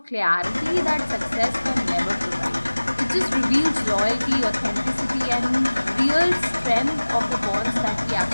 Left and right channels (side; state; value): both; inverted; correlation -1.00